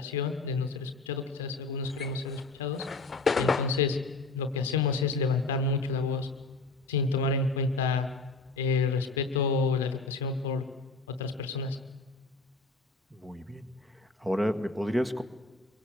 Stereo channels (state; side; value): quieter; right; 3.5 dB